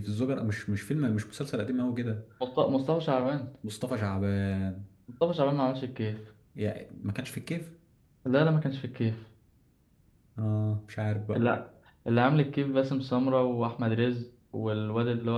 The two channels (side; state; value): both; identical; correlation 1.00